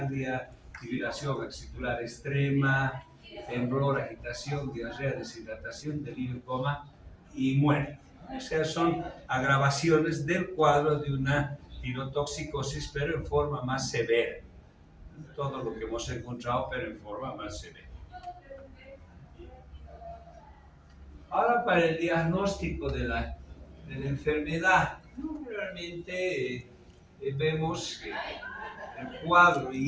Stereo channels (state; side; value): identical; both; correlation 1.00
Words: fibrilación axilar extrema, temblor, agitación, diarrea, deshidratación, delirio, coma y muerte. O sea, son agravaciones del cuadro de una tirotoxicosis, pero en forma más severa. Todo lo que hemos encontrado, pero en forma más severa. Ahora, para el diagnóstico de la enfermedad, realmente vemos que el cuadro